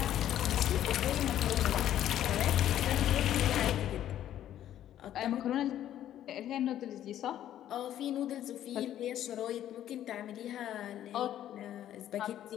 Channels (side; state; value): right; quieter; 11.6 dB